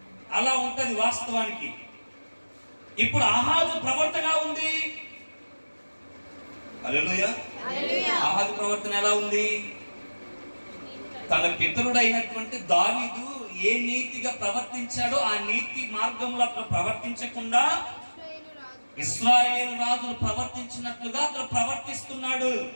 అలా ఉంటది వాస్తవానికి. ఇప్పుడు ఆహాజు ప్రవర్తన ఉంది. హల్లెలూయా. ఆహాజు ప్రవర్తన ఎలా ఉంది? తన పితరుడైనటువంటి దావీదు ఏ నీతిగా ప్రవర్తించాడో ఆ నీతి మార్గంలో అతను ప్రవర్తించకుండా ఇశ్రాయేలు రాజులు ప్రవర్తించినట్లుగా అతను ప్రవర్తిస్తున్నాడు.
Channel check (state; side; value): inverted; both; correlation -1.00